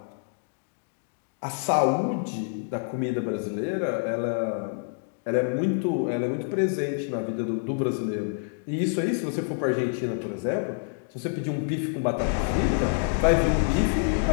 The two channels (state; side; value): silent; right; digital silence